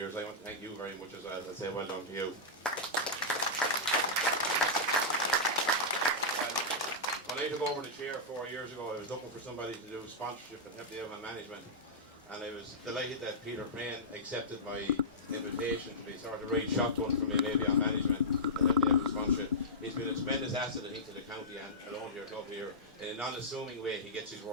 I want to thank you very much as well, and say well done to you. When I took over the chair 4 years ago, I was looking for somebody to do sponsorship and help me out with management, and I was delighted that Peter Crane accepted my invitation to be sort of right shotgun for me maybe on management and help me out with sponsorship. He's been a tremendous asset, I think, to the county and alone to your club here. In an unassuming way, he gets his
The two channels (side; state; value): both; normal; correlation -0.13